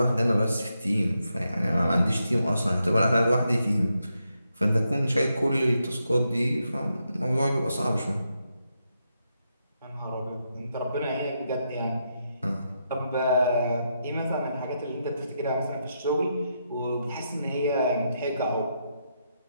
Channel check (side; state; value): both; inverted; correlation -0.82